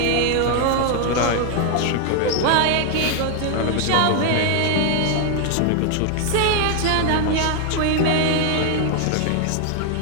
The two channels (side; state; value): both; different; correlation 0.00